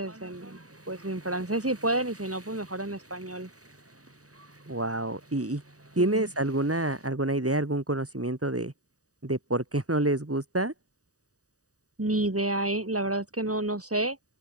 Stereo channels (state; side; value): late; left; 0.66 ms